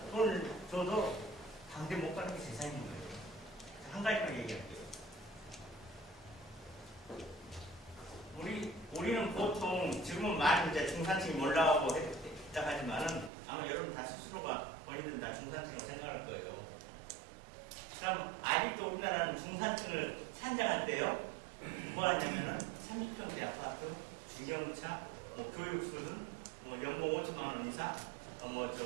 돈을 줘도 당대 못 가는 게 재산인 거예요. 한 가지만 얘기할게요. 우리는 보통 지금은 많이 이제 중산층이 올라가고 했다 하지만은 아마 여러분 다 스스로가 본인들은 다 중산층으로 생각할 거예요. 그럼 아직도 우리나라는 중산층을 산정할 때요. 뭐 하냐면은 30평대 아파트, 중형차, 뭐 교육 수준, 뭐 연봉 5천만 원 이상,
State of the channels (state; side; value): drops out; left; at 13.3 s